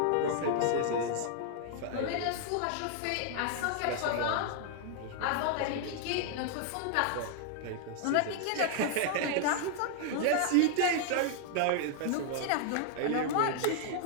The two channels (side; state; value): both; different; correlation 0.00